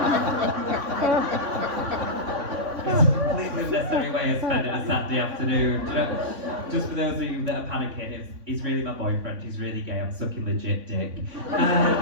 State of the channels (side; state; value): left; late; 3.5 ms